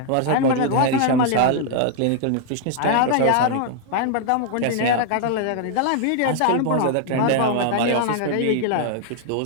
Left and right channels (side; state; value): both; different; correlation 0.00